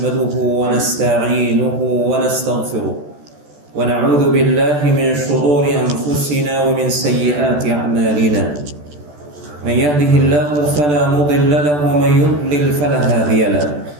ونستعينه ونستغفره ونعوذ بالله من شرور أنفسنا ومن سيئات أعمالنا. من يهده الله فلا مضل له ومن يضلل فلا هادي له.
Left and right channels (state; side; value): late; left; 14 ms